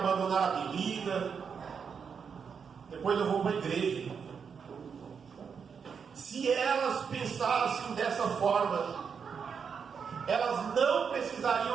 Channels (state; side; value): quieter; left; 6.4 dB